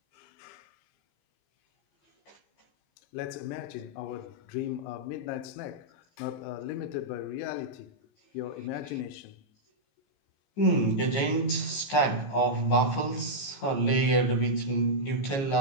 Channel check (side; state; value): right; late; 15 ms